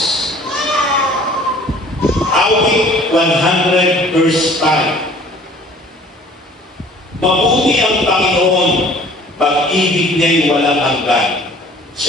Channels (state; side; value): normal; both; correlation 0.51